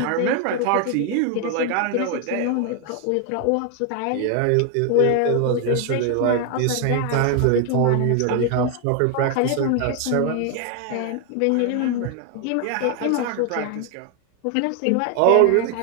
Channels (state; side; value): different; both; correlation 0.00